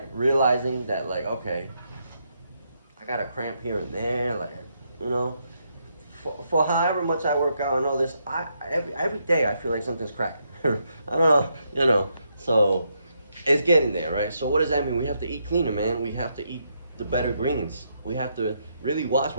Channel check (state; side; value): inverted; both; correlation -0.78